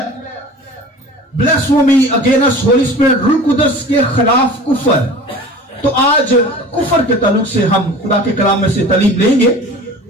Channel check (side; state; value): both; normal; correlation 0.40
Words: بلیسفیمی اگینسٹ ہولی اسپرٹ، روح القدس کے خلاف کفر۔ تو آج کفر کے تعلق سے ہم خدا کے کلام میں سے تعلیم لیں گے،